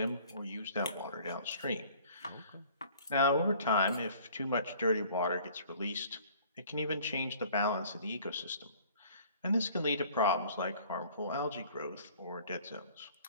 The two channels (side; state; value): both; inverted; correlation -0.52